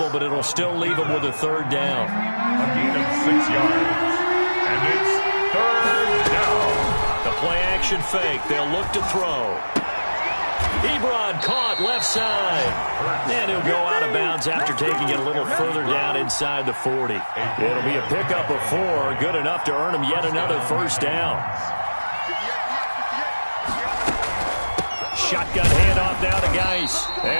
but it'll still leave him with a third down. A gain of 6 yards. And it's third down. The play action fake. They'll look to throw. Ebron caught left side. And he'll go out of bounds after taking it a little further down inside the 40. It'll be a pickup of 4. Good enough to earn him yet another first down. Shotgun handoff now to Geis.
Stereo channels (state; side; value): inverted; both; correlation -1.00